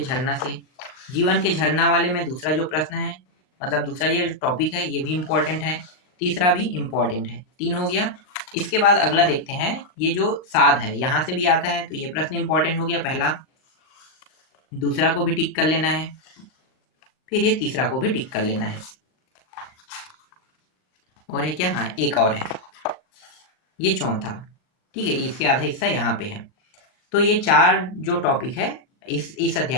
से। जीवन के झरना वाले में दूसरा जो प्रश्न है, मतलब दूसरा ये टॉपिक है, ये भी इंपॉर्टेंट है, तीसरा भी इंपॉर्टेंट है। 3 हो गया। इसके बाद अगला देखते हैं, ये जो साध है यहाँ से भी आता है, तो ये प्रश्न इंपॉर्टेंट हो गया पहला। दूसरा को भी टिक कर लेना है, फिर ये तीसरा को भी टिक कर लेना है। और है क्या, हाँ एक और है, ये चौथा। ठीक है, इसके आधा हिस्सा यहाँ पे है। तो ये 4 जो टॉपिक है इस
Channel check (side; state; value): right; late; 39 ms